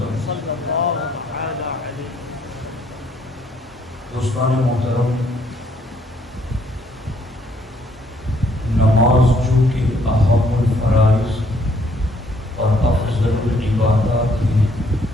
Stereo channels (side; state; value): both; normal; correlation 0.67